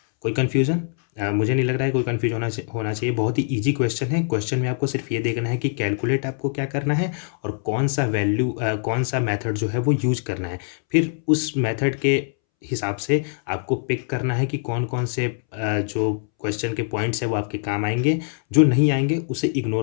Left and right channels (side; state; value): right; silent; 63 dB below the other